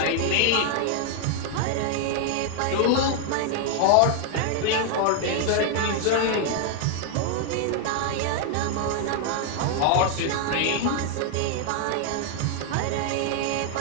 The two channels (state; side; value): different; both; correlation 0.00